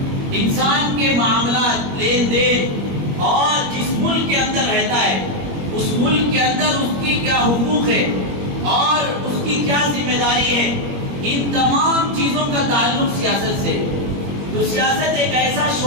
انسان کے معاملات، لین دین، اور جس ملک کے اندر رہتا ہے اس ملک کے اندر اس کی کیا حقوق ہے اور اس کی کیا ذمہ داری ہے، ان تمام چیزوں کا تعلق سیاست سے۔ تو سیاست ایک ایسا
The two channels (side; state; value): left; late; 21 ms